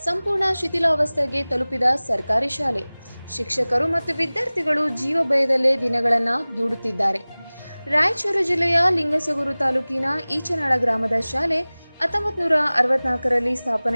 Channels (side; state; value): both; inverted; correlation -0.99